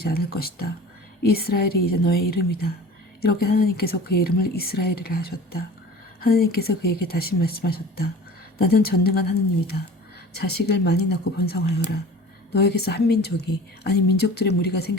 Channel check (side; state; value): both; normal; correlation 0.41